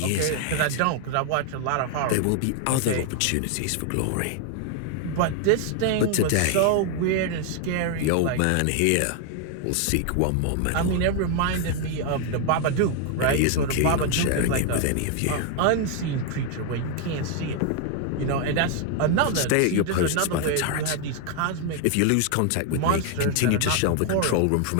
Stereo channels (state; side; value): different; both; correlation 0.00